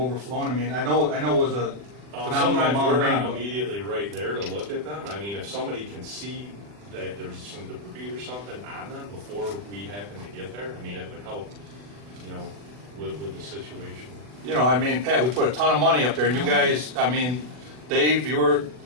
I know it was a phenomenal Sometimes amount of we're rain. not immediately right there to look at them. If somebody can see that there's some debris or something on them before we happen to get there, it would help, with the situation. Pat, we put a ton of money up there, and you guys, Dave, you were,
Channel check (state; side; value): late; left; 40 ms